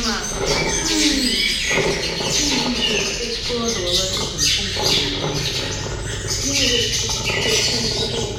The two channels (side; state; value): both; identical; correlation 1.00